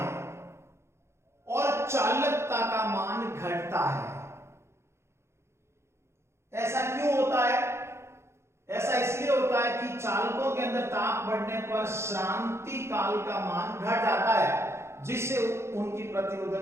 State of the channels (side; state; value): left; late; 0.13 ms